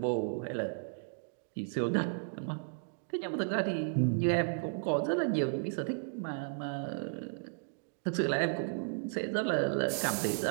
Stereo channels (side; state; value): left; silent; digital silence